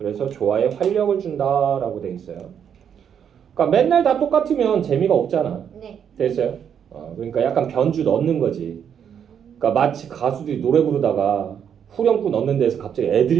조화에 활력을 준다라고 돼 있어요. 그러니까 맨날 다 똑같으면 재미가 없잖아. 네. 됐어요? 그러니까 약간 변주 넣는 거지. 그러니까 마치 가수들이 노래 부르다가 후렴구 넣는 데서 갑자기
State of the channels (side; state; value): left; quieter; 8.2 dB